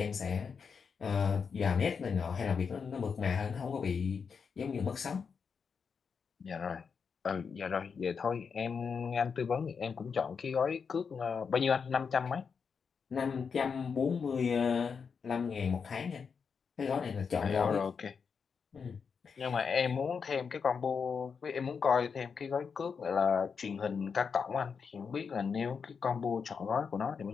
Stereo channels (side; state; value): right; quieter; 5.9 dB